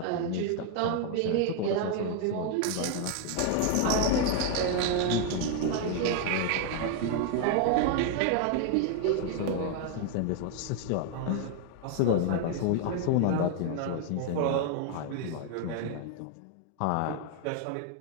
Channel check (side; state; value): both; different; correlation 0.00